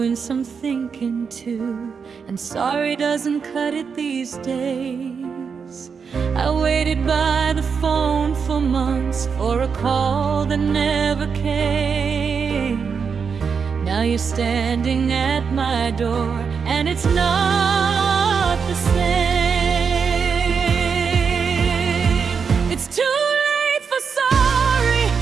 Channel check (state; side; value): quieter; left; 6.0 dB